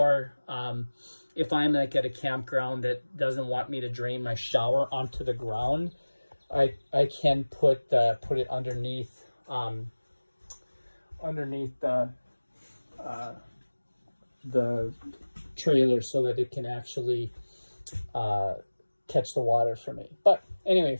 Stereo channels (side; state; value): both; inverted; correlation -1.00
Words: if I'm like at a campground that doesn't want me to drain my shower onto the ground, I can put it underneath the trailer so that it can actually catch the water for me. But anyway,